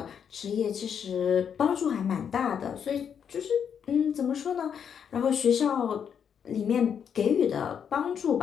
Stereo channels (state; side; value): quieter; right; 7.7 dB